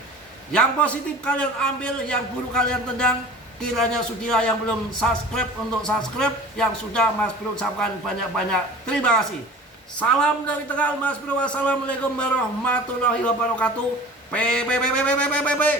Yang positif kalian ambil, yang buruk kalian tendang. Kiranya sudilah yang belum subscribe untuk subscribe, yang sudah Mas Bro ucapkan banyak-banyak terima kasih. Salam dari Tegal, Mas Bro. Wassalamualaikum warahmatullahi wabarakatuh.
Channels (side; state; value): both; normal; correlation 0.41